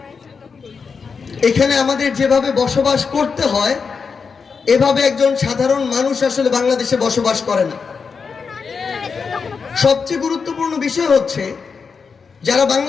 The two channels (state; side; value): quieter; right; 5.5 dB